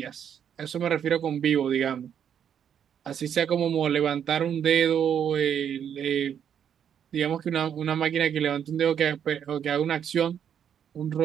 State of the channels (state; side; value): quieter; left; 8.6 dB